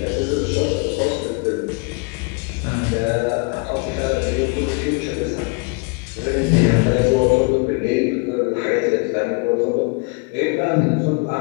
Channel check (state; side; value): quieter; right; 33.2 dB